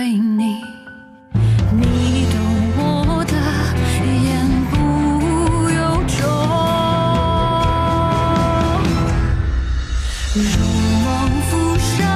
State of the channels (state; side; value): identical; both; correlation 1.00